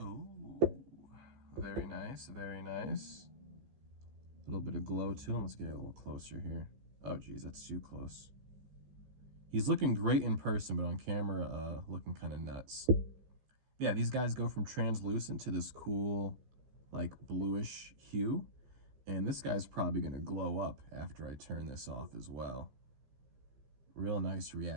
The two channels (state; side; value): late; left; 15 ms